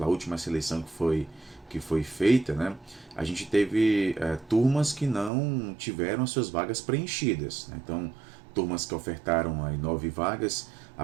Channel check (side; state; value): left; drops out; at 5.3 s